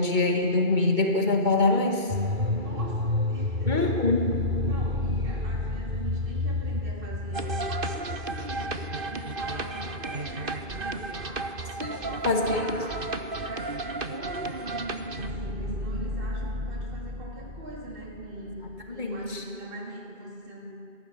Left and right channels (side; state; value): left; late; 2.2 ms